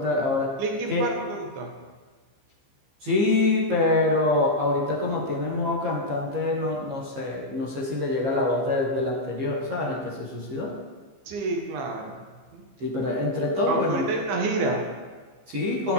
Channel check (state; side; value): late; left; 15 ms